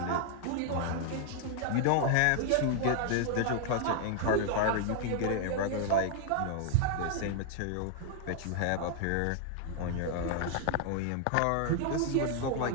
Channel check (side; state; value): both; different; correlation 0.00